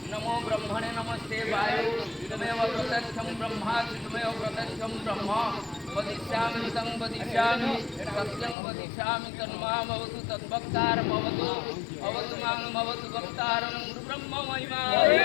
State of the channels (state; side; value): drops out; right; at 8.6 s